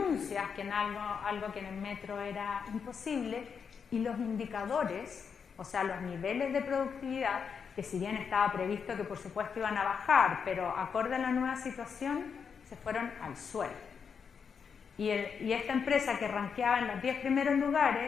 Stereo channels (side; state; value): right; quieter; 6.4 dB